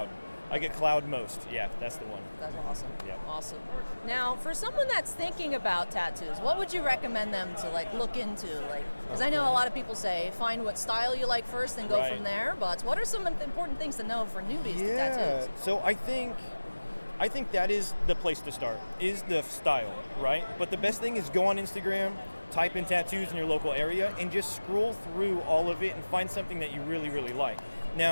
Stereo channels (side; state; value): both; inverted; correlation -1.00